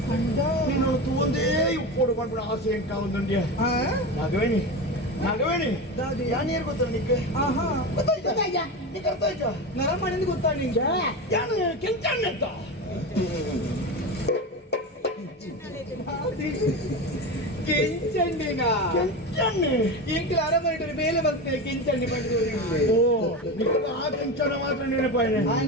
ನೀನು ಒಂದೇ ಉಪ್ಪೋಡು ಮಾಡ್ಬಿಡ ಆಸೆ ಎಂಕ ಒಂದುಂಡ್ಯ ನಾಗವೇಣಿ ನಾಗವೇಣಿ ಯಾನೇರು ಗೊತ್ತ ನಿಕ್ಕೆ ಗೊತ್ತಾಯ್ತಾ ನೀಕ್ ಅರ್ಥ ಆಯ್ತಾ ನರ ಮಾಡಿಂದ ಗೊತ್ತಾಡಿ ಯಾನು ಕೆಂಚಣ್ಣ ಅಂತ ಕೆಂಚಂಡಿನ ಈಗಲೂ ಅರಮನೆ ಮೇಲೆ ಬರ್ತೇನೆ ಕೆಂಚಂಡಿ ಬಂದು ಓ ಆ ಕೆಂಚನ ಮಾತ್ರ ನೆನಪಾಯಿನೆ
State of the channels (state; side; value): normal; both; correlation 0.23